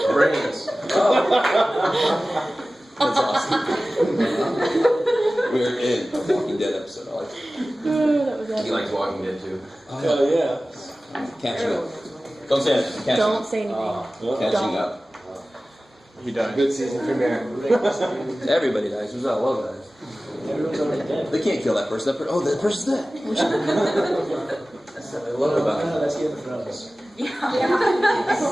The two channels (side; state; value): both; normal; correlation 0.96